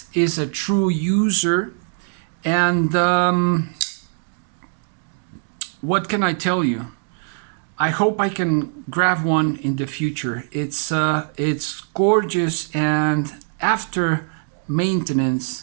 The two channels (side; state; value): left; silent; 64 dB below the other